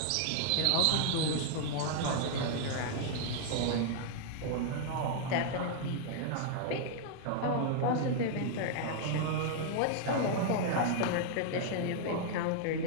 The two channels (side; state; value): both; different; correlation -0.01